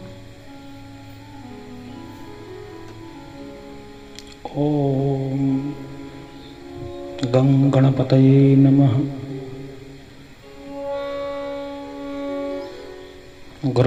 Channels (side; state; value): both; identical; correlation 1.00